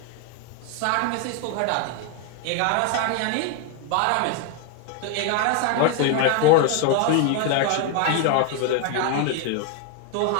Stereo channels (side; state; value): both; different; correlation 0.01